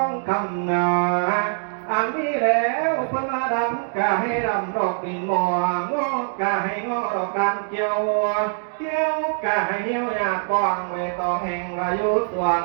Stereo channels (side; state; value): left; silent; digital silence